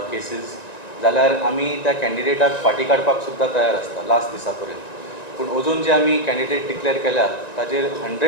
cases जाल्यार आमी त्या कॅन्डिडेटाक फाटी काडपाक सुद्दां तयार आसता लास्ट दिसा पर्यंत. पूण अजून जे आमी कॅन्डिडेट डिक्लेअर केल्या ताजेर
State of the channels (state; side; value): late; right; 1.9 ms